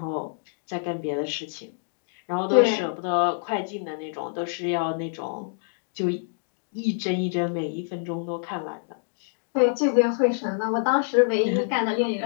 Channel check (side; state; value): right; silent; digital silence